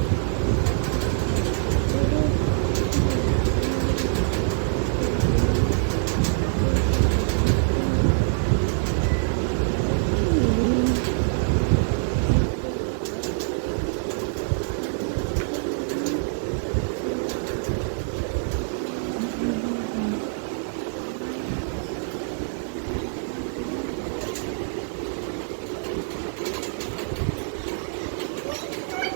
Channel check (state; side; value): silent; left; digital silence